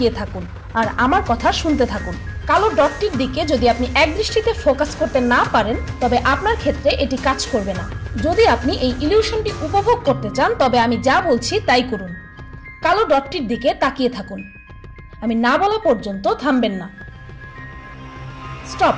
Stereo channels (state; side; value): identical; both; correlation 1.00